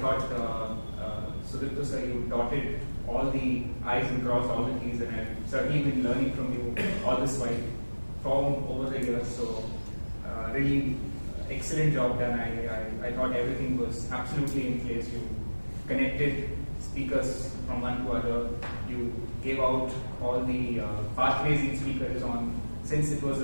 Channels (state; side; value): inverted; both; correlation -1.00